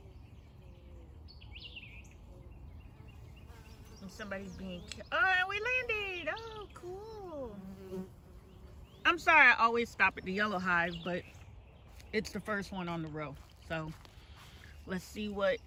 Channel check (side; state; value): both; identical; correlation 1.00